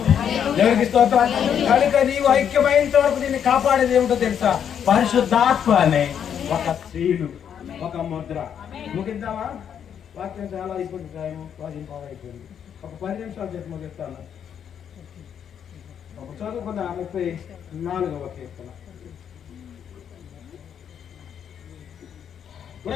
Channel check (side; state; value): right; quieter; 8.5 dB